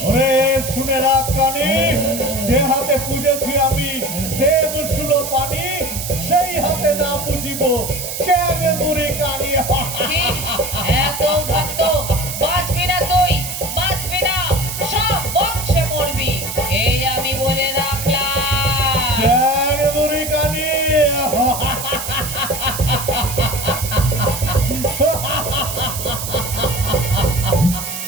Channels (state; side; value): noise; right; hiss, 6 dB below the sound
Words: ওরে শুনে রাখ কানি, যে হাতে পুজেছি আমি দেব শুলো পানি, সেই হাতে না পুজিব চ্যাংমুড়ি কানি। এত ভক্ত বাঁচবি না, তুই বাঁচবি না, সব বংশে মরবি, এই আমি বলে রাখলাম। চ্যাংমুড়ি কানি।